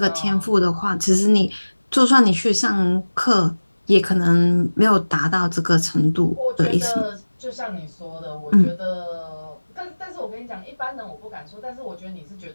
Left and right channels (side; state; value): both; inverted; correlation -1.00